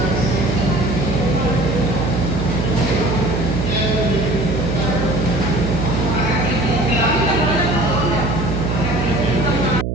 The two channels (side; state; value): right; noise; hum, 1 dB below the sound